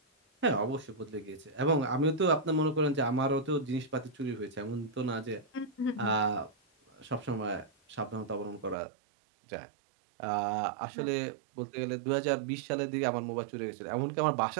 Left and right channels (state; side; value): drops out; left; at 8.8 s